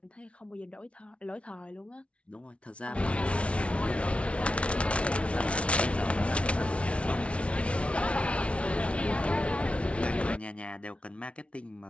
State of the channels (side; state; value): right; late; 0.061 ms